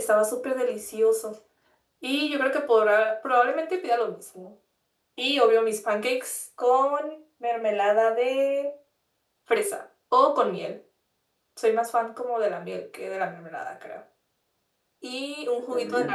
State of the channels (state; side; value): identical; both; correlation 1.00